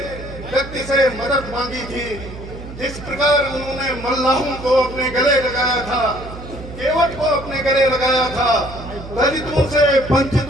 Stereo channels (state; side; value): noise; right; hum, 12 dB below the sound